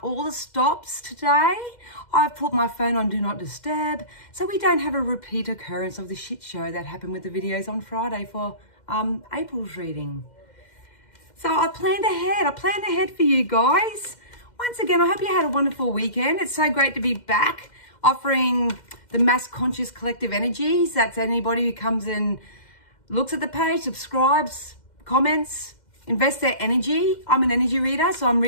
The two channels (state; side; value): late; right; 2.1 ms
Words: all the stops today. I've put my phone on Do Not Disturb so we don't have a repeat occurrence of the shit show that happened with the videos on Friday for April's reading. So I planned ahead for you guys. Once again, I hope you had a wonderful weekend. It's so great to be back offering the mass conscious collective energies. That's anybody who comes and looks at the page, subscribes, comments, invests their energy. I'm an energy reader, so I'm